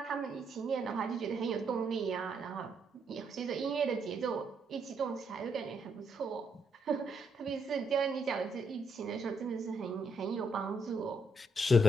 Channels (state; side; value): normal; both; correlation 0.76